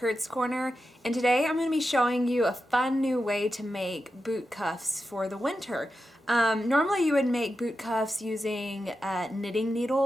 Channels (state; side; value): normal; both; correlation 0.90